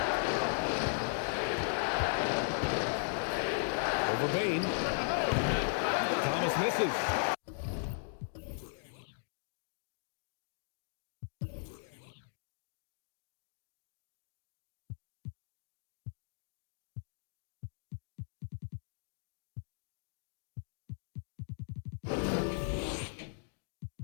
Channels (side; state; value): right; silent; digital silence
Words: Over Bane. Thomas misses.